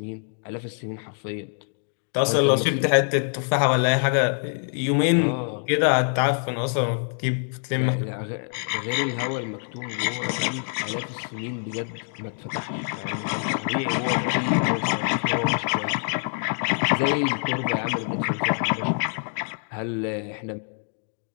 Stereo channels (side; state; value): right; silent; 62 dB below the other